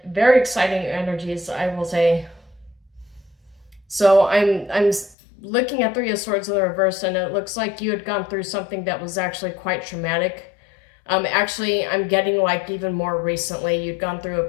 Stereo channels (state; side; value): drops out; right; at 5.2 s